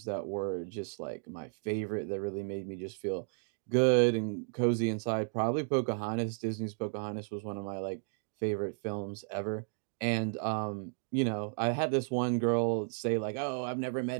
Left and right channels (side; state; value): left; silent; digital silence